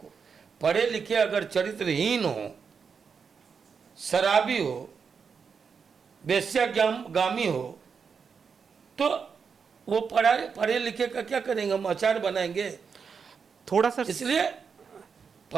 पढ़े लिखे अगर चरित्रहीन हो, शराबी हो, वेश्यागामी हो, तो वो पढ़े लिखे का क्या करेंगे? हम अचार बनाएंगे थोड़ा सा। इसलिए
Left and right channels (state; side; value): quieter; left; 6.0 dB